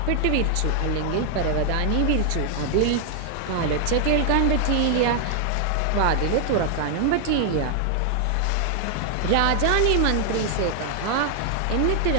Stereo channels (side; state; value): both; different; correlation 0.00